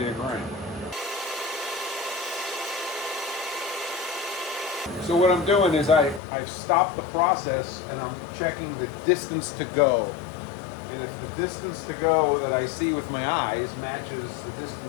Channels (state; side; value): drops out; right; at 6.2 s